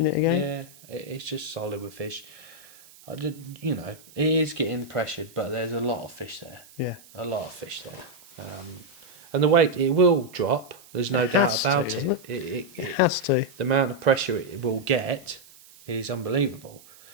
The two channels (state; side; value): noise; right; hiss, 23 dB below the sound